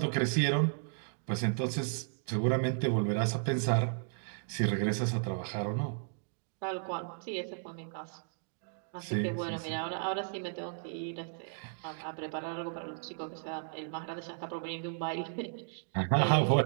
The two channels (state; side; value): silent; left; digital silence